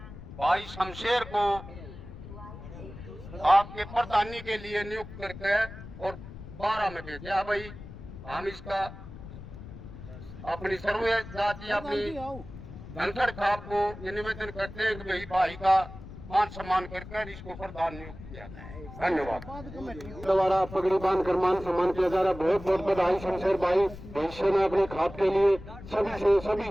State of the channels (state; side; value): noise; left; rumble, 14 dB below the sound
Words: भाई शमशेर को आपके प्रधानी के लिए नियुक्त करके और 12 में भेजा। भाई हम इसका अपनी सर्व जाति अपनी धनखड़ खाप को निवेदन करते हैं कि भाई का मान सम्मान करके इसको प्रधान नियुक्त किया जाए। धन्यवाद। द्वारा पगड़ी बांध कर मान सम्मान किया जा रहा है। बहुत बहुत बधाई शमशेर भाई। भविष्य में अपने खाप के लिए सभी